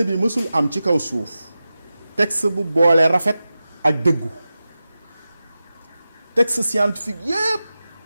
bi mësul am ci kaw suuf texte bu boole rafet ak dëggu texte scientifique yépp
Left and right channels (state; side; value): inverted; both; correlation -0.94